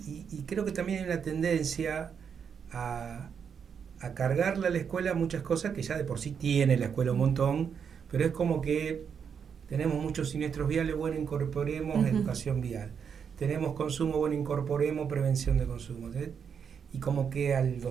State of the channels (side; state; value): left; quieter; 7.0 dB